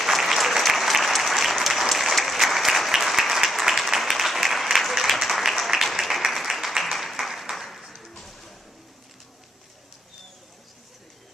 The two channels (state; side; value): normal; both; correlation 0.77